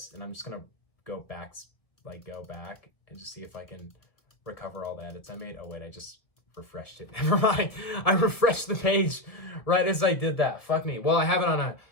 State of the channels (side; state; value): right; late; 1.5 ms